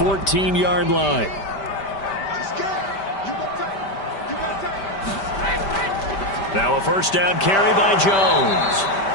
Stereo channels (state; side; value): late; right; 5.1 ms